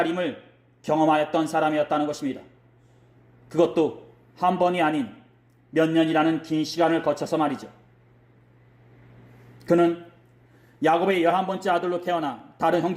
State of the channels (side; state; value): both; identical; correlation 1.00